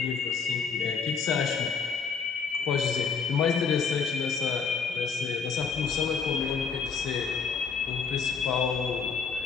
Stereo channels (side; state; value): right; quieter; 5.6 dB